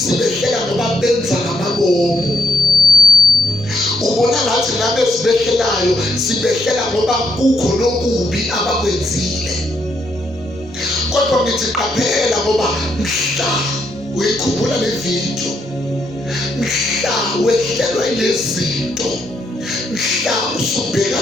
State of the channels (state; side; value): normal; both; correlation 0.77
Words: ngoba benza ngamabomu. Ubona ngathi laba esibehlelayo sibehlela ngoba kukho nokubi abakwenzile. Kodwa ngithi qaphela ngoba mhla uyikhumbula le video, mhla wehlelwa ilezinto, mhla